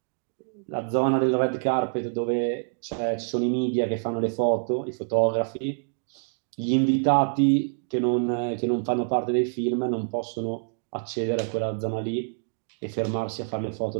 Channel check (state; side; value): silent; left; digital silence